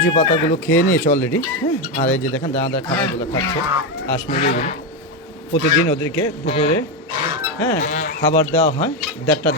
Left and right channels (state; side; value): normal; both; correlation 0.09